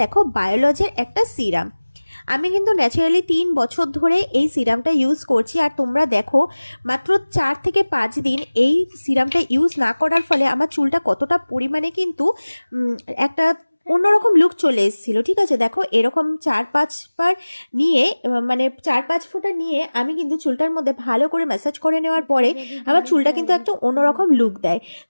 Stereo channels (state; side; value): inverted; both; correlation -1.00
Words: দেখো, বায়োলজির একটা সিরাম। আমি কিন্তু ন্যাচারালি 3 বছর ধরে এই সিরামটা ইউজ করছি। আর তোমরা দেখো, মাত্র 4 থেকে 5 দিন এই সিরামটা ইউজ না করার ফলে আমার চুলটা কতটা পরিমাণে কিন্তু একটা অন্যরকম লুক চলে এসেছিলো। ঠিক আছে, দেখো, এরকম 4-5 বার নিয়ে, মানে 4-5 ফোঁটা নিয়ে আমি কিন্তু চুলটার মধ্যে ভালো করে ম্যাসাজ করে নেওয়ার পরে আমার চুলটা কিন্তু একটা অন্যরকম লুক দেয়।